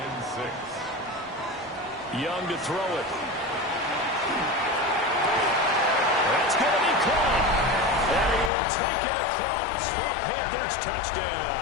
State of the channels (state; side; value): drops out; right; at 8.5 s